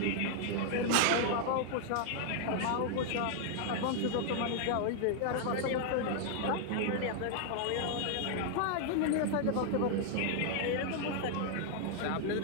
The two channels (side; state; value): both; different; correlation 0.00